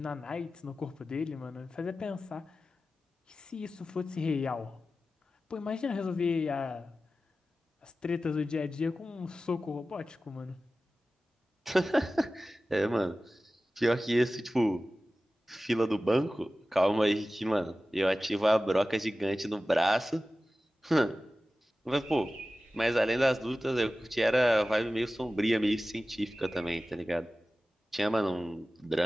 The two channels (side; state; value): both; normal; correlation 0.95